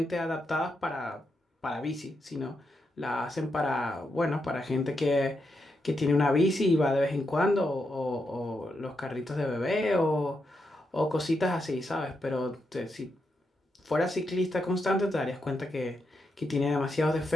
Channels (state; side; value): normal; both; correlation 0.84